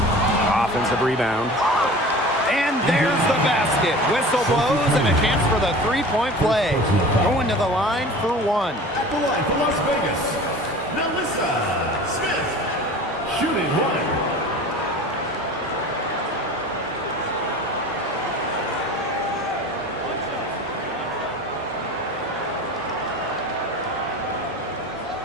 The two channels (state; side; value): normal; both; correlation 0.39